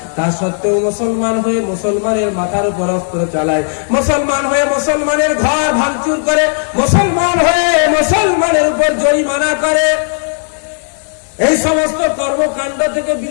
তা সত্ত্বেও মুসলমান হয়ে মুসলমানের মাথার উপর অস্ত্র চালায়, মুসলমান হয়ে মুসলমানের ঘর ভাঙচুর করে, মুসলমান হয়ে মুসলমানের উপর জরিমানা করে, এই সমস্ত কর্মকাণ্ড থেকে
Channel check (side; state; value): right; silent; digital silence